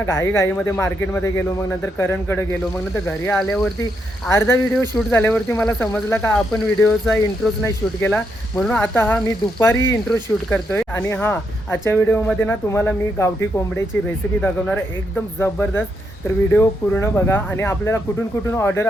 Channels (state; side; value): normal; both; correlation 0.79